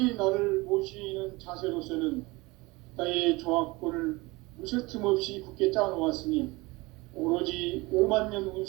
나를 모시는 자세로서는 나의 조화권을 무쇠틈 없이 굳게 짜놓았으니 오로지 5만 년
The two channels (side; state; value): left; quieter; 23.2 dB